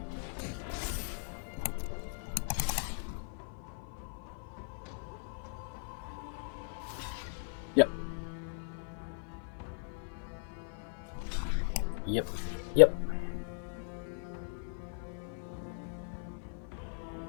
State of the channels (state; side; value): silent; right; 53 dB below the other